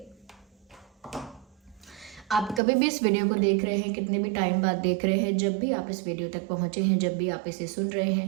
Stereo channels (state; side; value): drops out; left; at 2.6 s